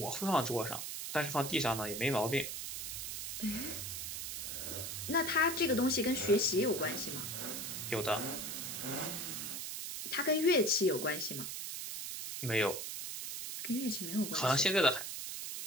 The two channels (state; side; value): noise; right; hiss, 5 dB below the sound